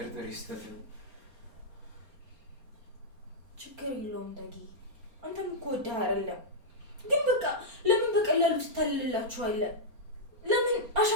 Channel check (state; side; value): late; left; 4.3 ms